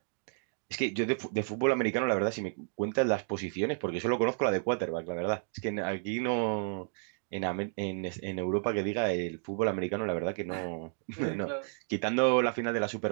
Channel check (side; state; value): left; silent; 57 dB below the other